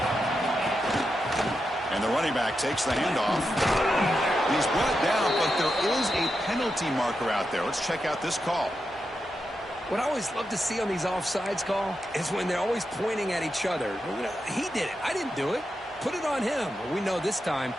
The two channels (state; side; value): normal; both; correlation 0.87